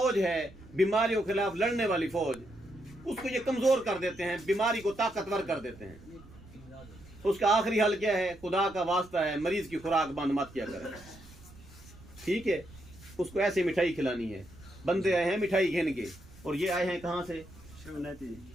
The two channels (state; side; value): noise; right; rumble, 21 dB below the sound